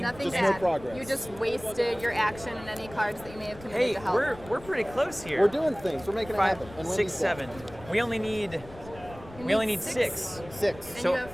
Nothing Just no bad. progress. You just wasted your action and any cards that you may have committed Hey, to help. we're pretty close here. We're doing things. We're making it 5, happen. And 6, Wendy's dead. 7. We only need You we only need six. 6. 6. And So you have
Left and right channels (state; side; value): noise; left; rumble, 18 dB below the sound